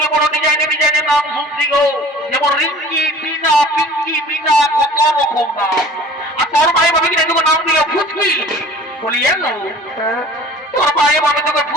বড় ডিজাইনের নাম শুনছি গো যেমন রিঙ্কি বিনা পিঙ্কি বিনা কত রকম নাম আর তোর ভাই ভাবি কিনা তোকে নাম দিল ফুচকি বলি এলো হ্যাঁ তোর ভাই ভাবি তোকে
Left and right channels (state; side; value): normal; both; correlation 0.46